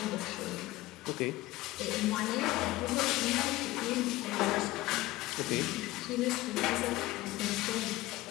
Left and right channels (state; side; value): quieter; right; 18.2 dB